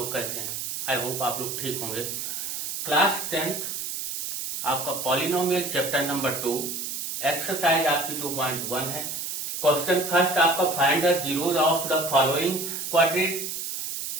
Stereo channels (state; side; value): noise; right; hiss, 4 dB below the sound